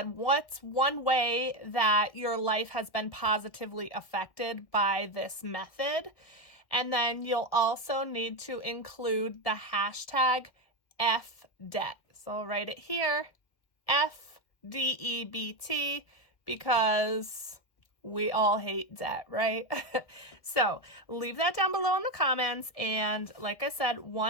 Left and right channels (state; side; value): late; right; 1.7 ms